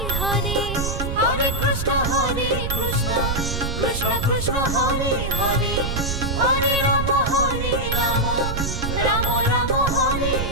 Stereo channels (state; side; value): noise; right; rumble, 3 dB below the sound